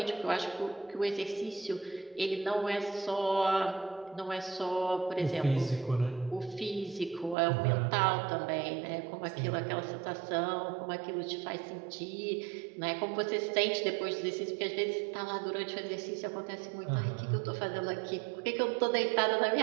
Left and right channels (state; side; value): drops out; left; at 7.4 s